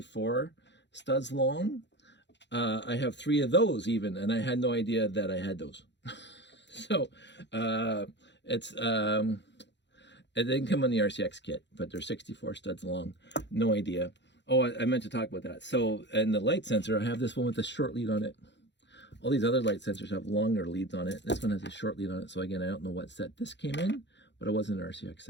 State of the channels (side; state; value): right; late; 0.52 ms